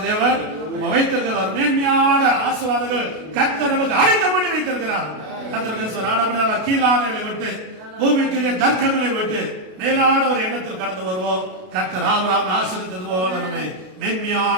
தேவன் வைத்திருக்கிறார். மேன்மையான ஆசீர்வாதங்கள் கர்த்தர் நமக்கு ஆயத்தம் பண்ணி வைத்திருக்கிறார். கர்த்தருக்கு கீழானவர்களை விட்டு, பூமிக்குரிய தர்க்கங்களை விட்டு மேலான ஒரு எண்ணத்தில் கடந்து வருவோம். கர்த்தர் ஆபிரகாமை ஆசீர்வதித்தது போல நம்மை மேன்மையான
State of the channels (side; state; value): left; late; 32 ms